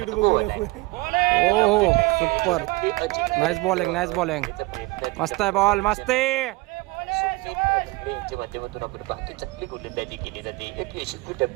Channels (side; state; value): left; quieter; 22.9 dB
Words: ओ सुपर. नाईस बॉलिंग मस्त आहे बॉल मस्त आहे. यांच्या माध्यमातून आपण पाहतो चांगली गोलंदाजी केली जाते. एक यशस्वी